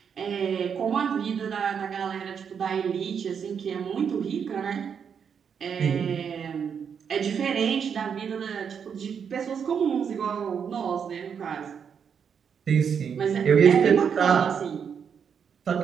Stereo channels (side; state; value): left; quieter; 7.1 dB